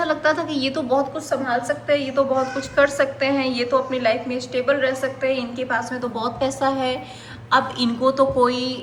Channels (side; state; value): both; identical; correlation 1.00